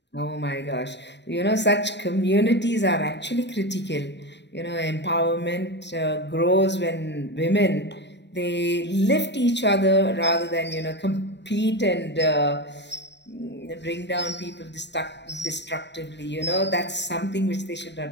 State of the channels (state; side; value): late; right; 0.51 ms